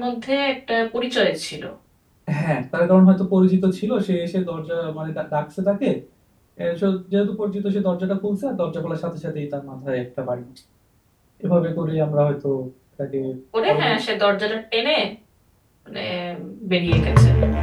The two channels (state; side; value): identical; both; correlation 1.00